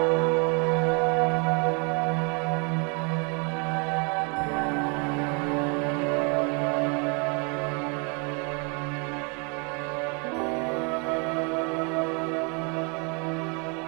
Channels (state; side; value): quieter; left; 34.1 dB